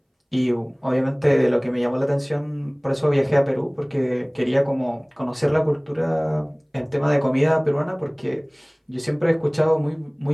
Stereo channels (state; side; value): identical; both; correlation 1.00